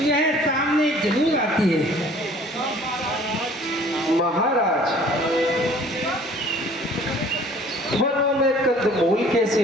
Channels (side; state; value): both; normal; correlation 0.53